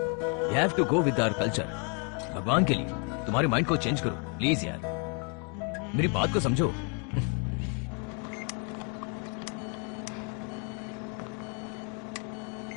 We have to go with our culture. भगवान के लिए तुम्हारे माइंड को चेंज करो प्लीज यार, मेरी बात को समझो।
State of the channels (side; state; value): right; quieter; 38.3 dB